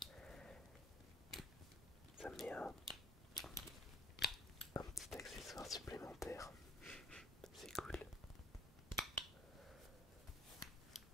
Ça met un petit accessoire supplémentaire. C'est cool.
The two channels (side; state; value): both; normal; correlation 0.57